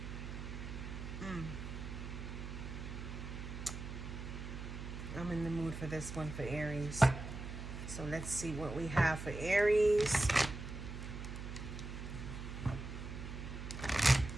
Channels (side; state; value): right; noise; hum, 7 dB below the sound